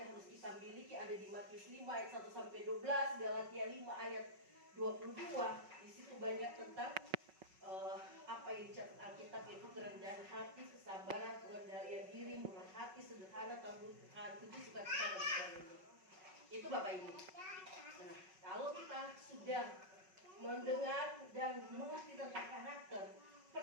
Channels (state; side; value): late; left; 5.4 ms